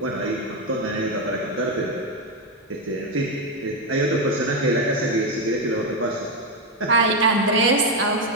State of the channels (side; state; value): both; normal; correlation 0.07